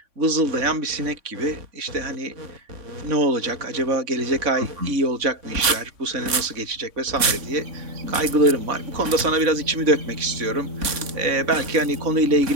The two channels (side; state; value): left; late; 3.5 ms